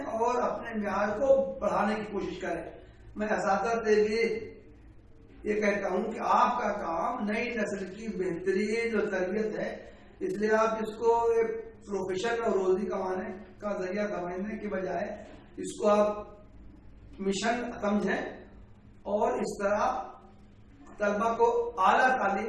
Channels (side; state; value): both; identical; correlation 1.00